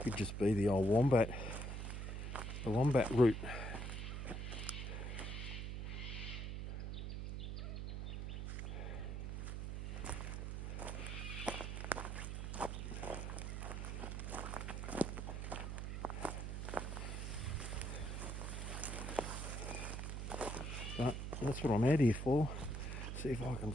just be the old wombat. The wombat route. But that's what I'm out here for. See if I can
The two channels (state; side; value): noise; right; hum, 4 dB below the sound